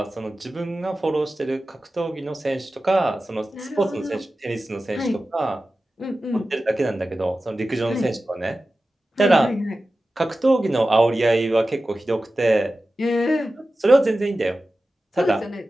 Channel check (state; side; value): normal; both; correlation 0.95